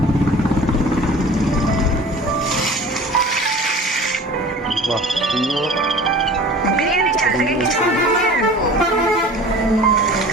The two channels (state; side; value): normal; both; correlation 0.42